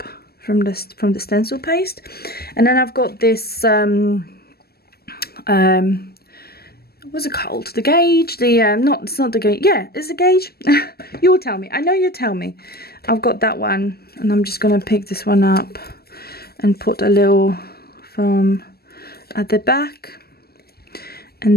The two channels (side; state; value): right; late; 0.45 ms